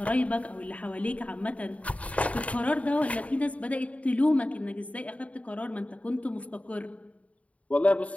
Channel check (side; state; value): right; late; 0.066 ms